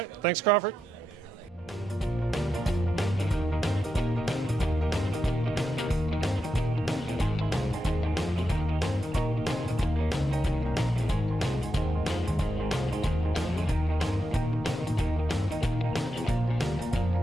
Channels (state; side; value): normal; both; correlation 0.86